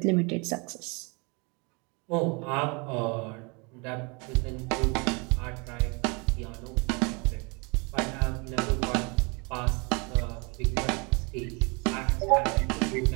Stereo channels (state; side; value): quieter; left; 30.3 dB